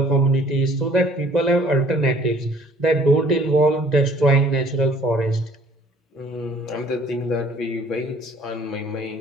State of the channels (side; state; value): both; normal; correlation 0.56